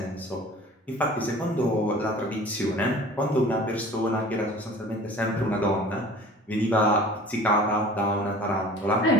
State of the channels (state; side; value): normal; both; correlation 0.45